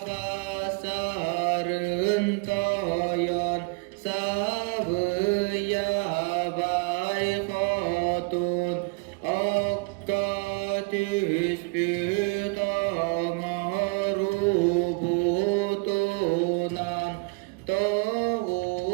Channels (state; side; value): quieter; left; 30.5 dB